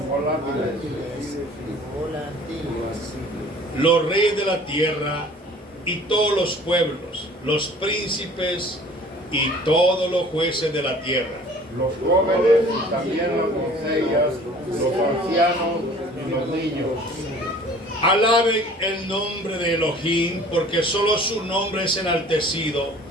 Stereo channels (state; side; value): normal; both; correlation 0.49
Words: volátiles. Los reyes de la tierra y todos los pueblos, los príncipes y todos los jueces de la tierra. Los jóvenes y también las doncellas, los ancianos y los niños. Alaben el nombre de Elohim, porque solo su nombre es enaltecido,